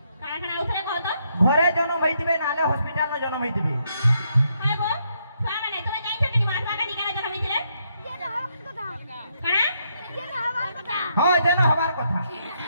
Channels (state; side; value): inverted; both; correlation -0.75